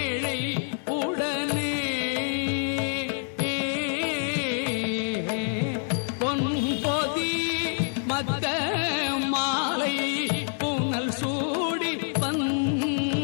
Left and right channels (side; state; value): right; silent; 60 dB below the other